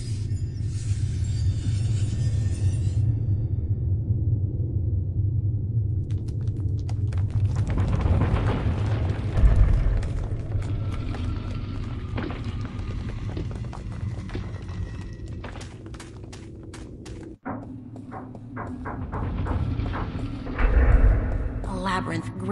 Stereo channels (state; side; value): identical; both; correlation 1.00